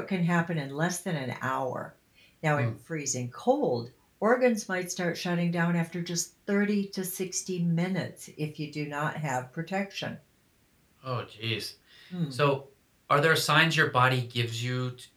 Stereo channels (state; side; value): identical; both; correlation 1.00